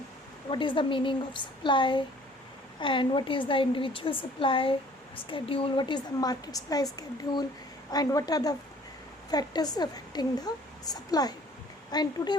what is the meaning of supply and what is the individual supply schedule, what is the market supply schedule, and what are the factors affecting the supply. And today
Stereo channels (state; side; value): normal; both; correlation 0.54